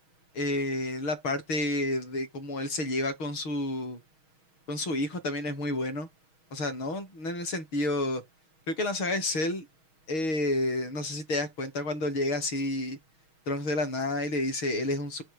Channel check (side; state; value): right; late; 6.3 ms